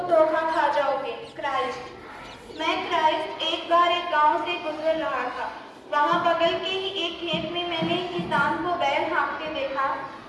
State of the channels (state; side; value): identical; both; correlation 1.00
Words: धोखा खा जाओगे। क्राइस्ट। मैं क्राइस्ट एक बार एक गांव से गुजर रहा था। वहां बगल के ही एक खेत में मैंने एक किसान को बैल हाँकते देखा।